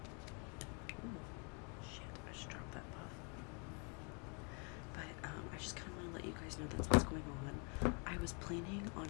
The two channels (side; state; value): right; quieter; 35.7 dB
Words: ooh, shit, I just dropped that puff. But I just kind of want to let you guys know that's what's going on. I was planning on